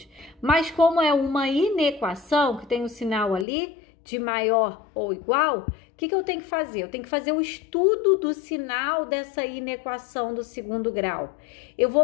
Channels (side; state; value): right; drops out; at 3.5 s